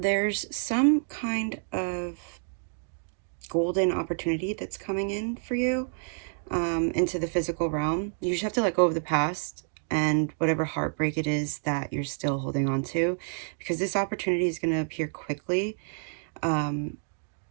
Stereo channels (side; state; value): left; silent; 59 dB below the other